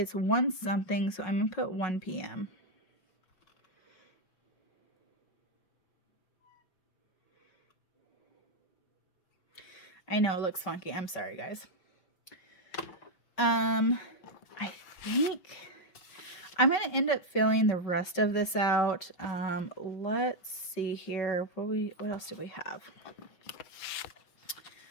1 something, so I'm going to put 1 p.m. I know it looks funky. I'm sorry, guys. I think I'm going to end up filling the rest of this out. Let's see here. What else do we have?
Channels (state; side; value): late; right; 5.3 ms